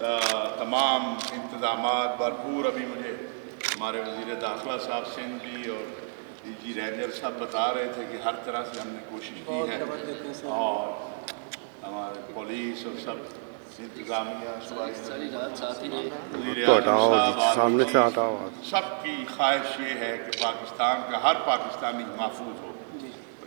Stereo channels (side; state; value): left; silent; digital silence